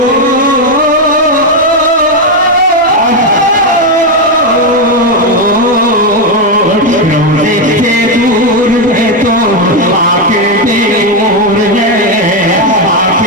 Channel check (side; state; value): both; normal; correlation 0.06